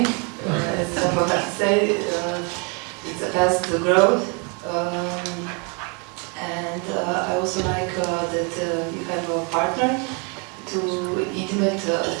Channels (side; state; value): left; quieter; 33.0 dB